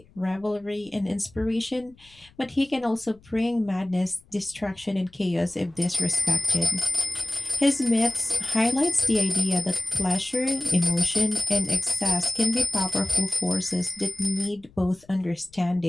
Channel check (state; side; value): noise; left; rumble, 28 dB below the sound